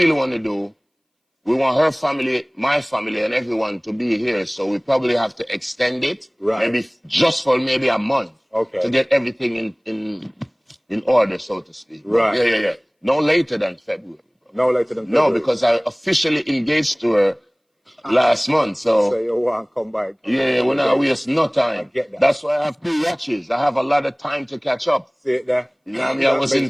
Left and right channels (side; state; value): both; identical; correlation 1.00